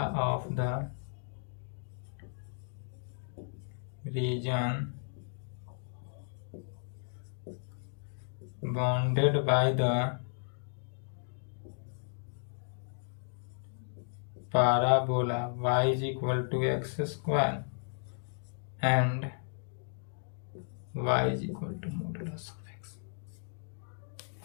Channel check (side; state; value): right; silent; digital silence